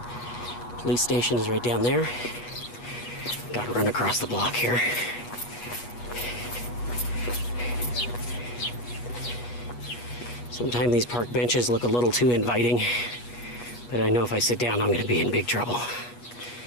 Police station is right down there. Gotta run across the block here. Sometimes these park benches look a little too inviting, but I know if I sit down, I'm gonna be in big trouble.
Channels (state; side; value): late; right; 8.4 ms